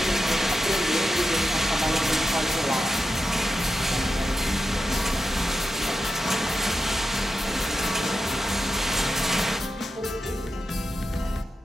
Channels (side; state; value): both; normal; correlation 0.89